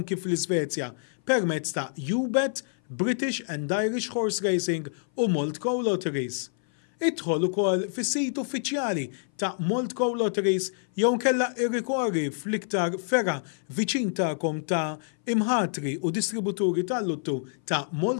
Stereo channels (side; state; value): right; silent; 58 dB below the other